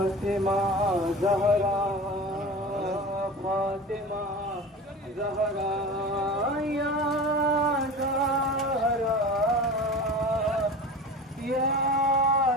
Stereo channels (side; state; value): both; normal; correlation 0.33